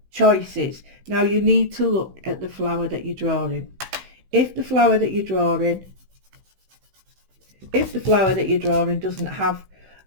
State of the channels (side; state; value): left; late; 16 ms